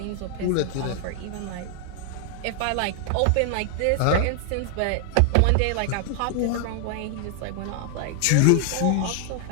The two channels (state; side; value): different; both; correlation 0.00